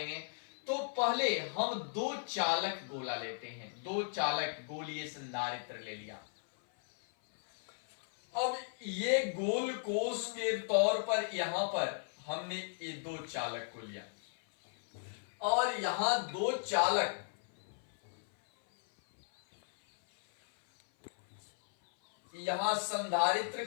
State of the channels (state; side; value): silent; right; 54 dB below the other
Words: तो पहले हम दो चालक गोला लेते हैं, दो चालक गोलीय संधारित्र ले लिया। अब ये गोल कोष के तौर पर यहां पर हमने ये दो चालक को लिया और यहां दो चालक, यहां संधारित्र